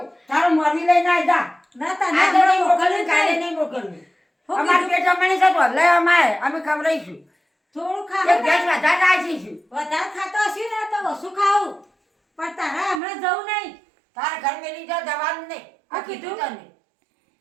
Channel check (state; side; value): drops out; left; at 13.0 s